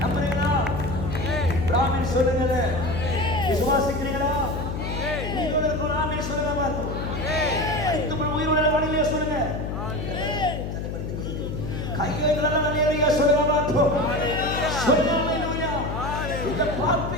நம்புறீங்களா? ஆமென் சொல்லுங்க. விசுவாசிக்கிறீங்களா? உங்களுக்கு ஒரு ஆமென் சொல்லுங்க பாருங்க. அனைத்து உயிருள்ள வாணிலே சொல்லுங்க. கையேந்திரல ஹல்லேலூயா சொல்லுங்க பாருங்க. சொல்லுங்க ஹல்லேலூயா. இத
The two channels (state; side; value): noise; left; hum, 4 dB below the sound